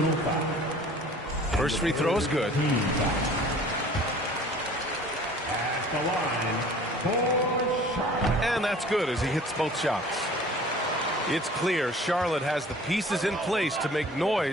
foul. First free throw is good. At the line for Charlotte. And that's good as he hits both shots. It's clear Charlotte has the pieces in place to make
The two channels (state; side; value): normal; both; correlation 0.48